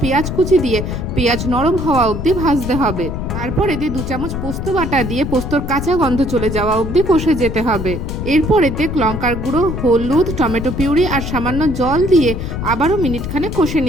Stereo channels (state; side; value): noise; left; rumble, 5 dB below the sound